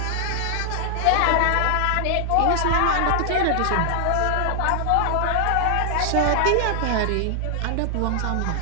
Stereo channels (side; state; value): both; different; correlation -0.01